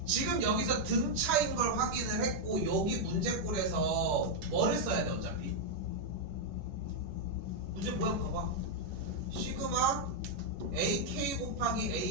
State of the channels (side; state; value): left; late; 10 ms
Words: 지금 여기서 등차인 걸 확인을 했고 여기 문제꼴에서 뭐를 써야 돼 어차피? 문제 모양 봐봐. 시그마 AK 곱하기